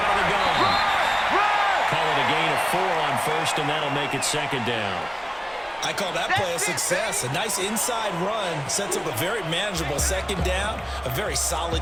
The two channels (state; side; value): identical; both; correlation 1.00